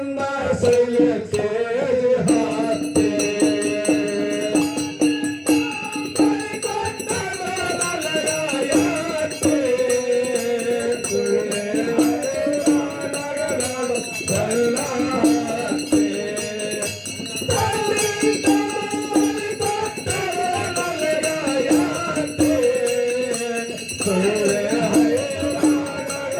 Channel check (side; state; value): both; identical; correlation 1.00